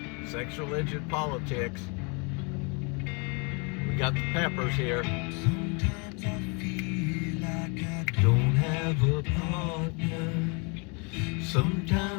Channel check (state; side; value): quieter; right; 33.1 dB